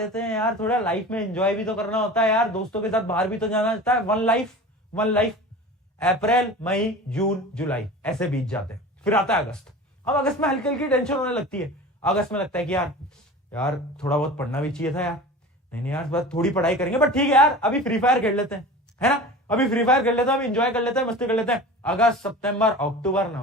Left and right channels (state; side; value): normal; both; correlation 0.36